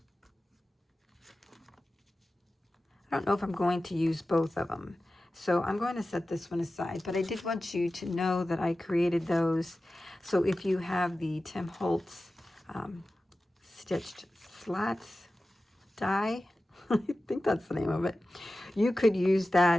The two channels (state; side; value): normal; both; correlation 0.95